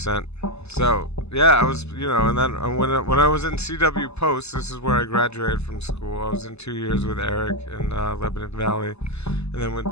So, yeah, I was, you know, and then when I was in CW Post, this is where I graduated from school. I was in 2 years with Eric in Lebanon Valley, and then went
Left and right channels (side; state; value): right; late; 0.80 ms